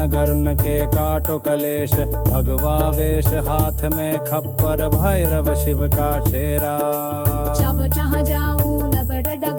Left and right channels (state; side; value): identical; both; correlation 1.00